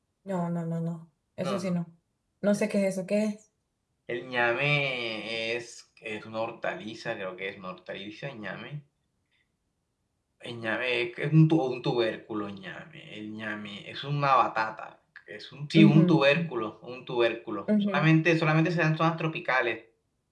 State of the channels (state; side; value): identical; both; correlation 1.00